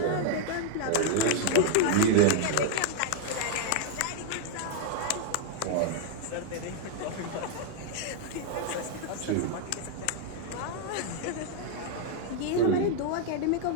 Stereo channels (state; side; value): different; both; correlation 0.00